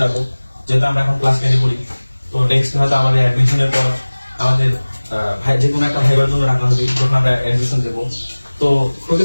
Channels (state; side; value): inverted; both; correlation -1.00